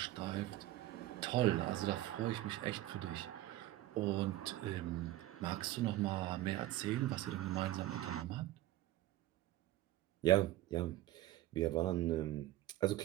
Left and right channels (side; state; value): left; quieter; 15.5 dB